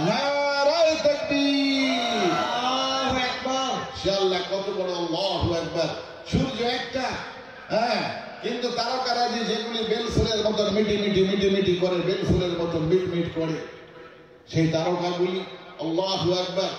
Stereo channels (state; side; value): identical; both; correlation 1.00